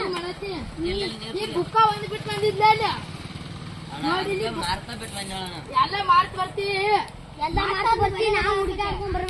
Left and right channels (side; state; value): both; identical; correlation 1.00